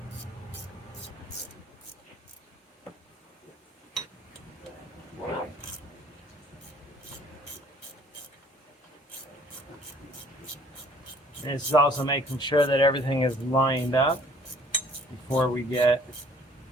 And this is also making sure that everything is lined up before we get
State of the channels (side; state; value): both; normal; correlation 0.57